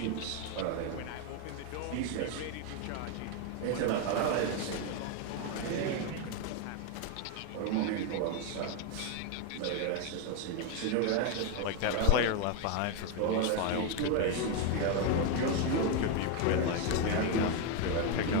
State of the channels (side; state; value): both; different; correlation 0.01